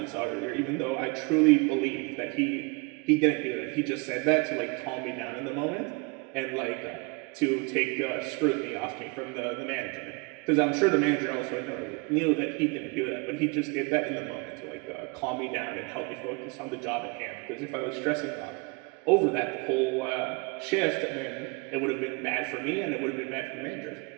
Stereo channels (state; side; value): quieter; left; 29.3 dB